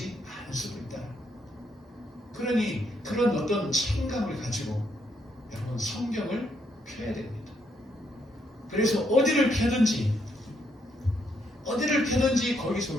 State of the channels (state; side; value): normal; both; correlation 0.76